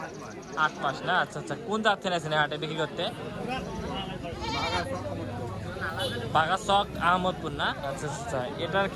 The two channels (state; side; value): identical; both; correlation 1.00